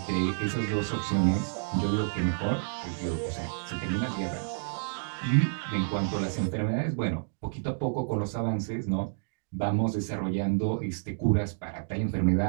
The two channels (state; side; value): silent; left; digital silence